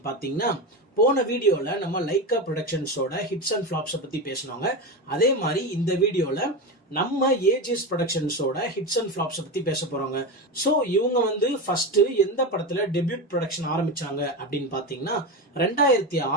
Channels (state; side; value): normal; both; correlation 0.19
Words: பாத்தீங்கன்னா, போன வீடியோல நம்ம லைக்கா ப்ரொடக்ஷன்ஸோட ஹிட்ஸ் அண்ட் ஃபிளாப்ஸ் பத்தி பேசணுங்க. அதே மாதிரி இந்த வீடியோல நம்ம ஏஜிஎஸ் ப்ரொடக்ஷன்ஸோட ஹிட்ஸ் அண்ட் ஃபிளாப்ஸ் பத்தி பேச போறோங்க. சோ இவங்க ஃபர்ஸ்ட் எந்த படத்துல டெபியூட் ப்ரொடக்ஷன் ஆரம்பிச்சாங்க அப்படின்னு பாத்தீங்கன்னா